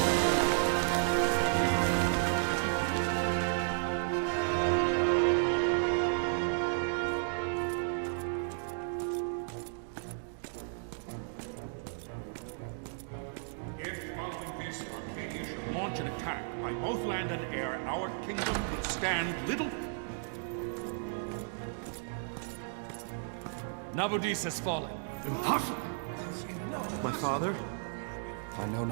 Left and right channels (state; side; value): silent; left; digital silence